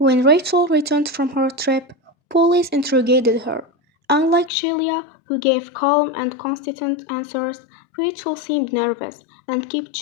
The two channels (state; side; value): drops out; right; at 4.5 s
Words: Rachel returned from her trip, police interrogated her. Unlike Sheila, who gave calm and consistent answers, Rachel seemed nervous and kept